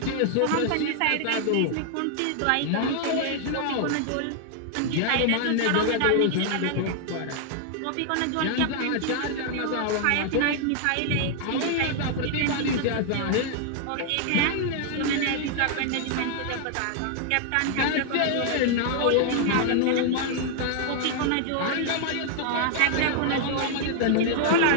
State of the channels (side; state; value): both; different; correlation 0.00